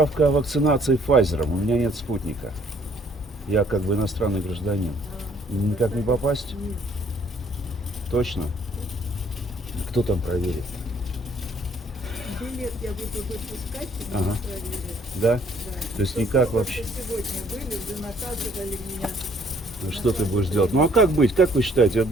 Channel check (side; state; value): both; normal; correlation 0.62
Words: о вакцинации Pfizer. У меня нет спутника. Я как бы иностранный гражданин. Никак не попасть? Нет. Точно? Кто там проверит? Билет я буду выпускать, и Ага. проверят. Да? Да. То есть Только никак вот вообще? Сегодня были, уже наказывали меня. Ну, что ты будешь делать? Ну а как быть? Как вы считаете? Это